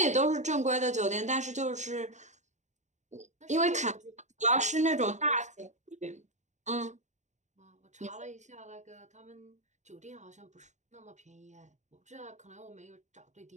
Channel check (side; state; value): left; late; 0.34 ms